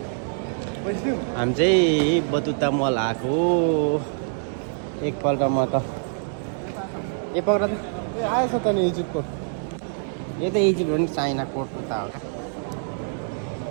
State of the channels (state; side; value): silent; left; digital silence